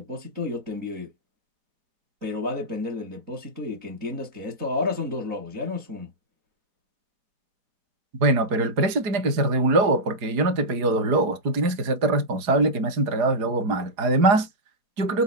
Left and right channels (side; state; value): left; late; 4.8 ms